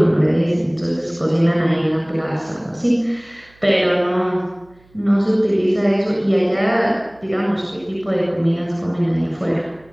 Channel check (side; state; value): right; noise; hum, 30 dB below the sound